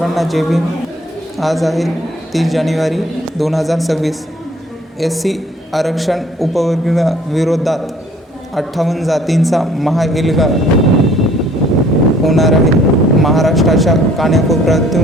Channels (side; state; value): both; normal; correlation 0.58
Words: जय भीम. आज आहे 30 जानेवारी 2026. SC आरक्षण उपवर्गाविरोधात 58 जातींचा महाएल्गार होणार आहे. महाराष्ट्राच्या